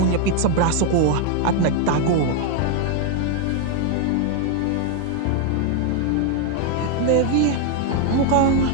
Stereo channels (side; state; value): both; different; correlation 0.00